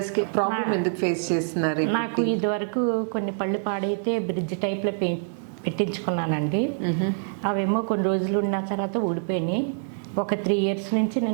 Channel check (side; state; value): left; silent; 61 dB below the other